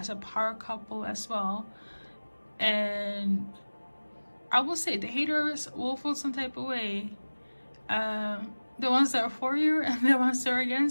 a power couple as well, and I will say the haters will feel some type of way. The ones that are for you and the ones that are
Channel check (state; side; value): inverted; both; correlation -1.00